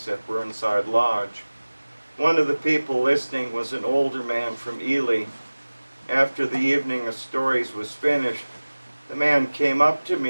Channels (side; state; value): both; inverted; correlation -1.00